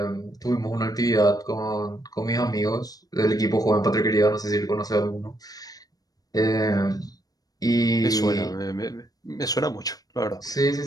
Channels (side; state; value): right; late; 0.18 ms